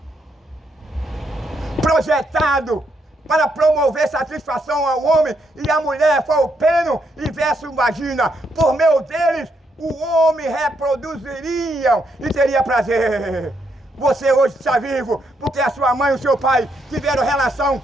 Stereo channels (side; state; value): both; normal; correlation 0.77